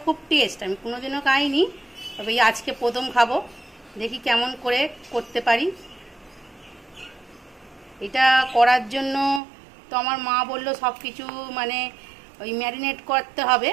খুব টেস্ট। আমি কোনোদিনও খাইনি, তবে এই আজকে প্রথম খাবো, দেখি কেমন করে করতে পারি। এটা করার জন্য তো আমার মা বললো সব কিছু মানে ওই ম্যারিনেট করতে হবে,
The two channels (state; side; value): drops out; left; at 9.4 s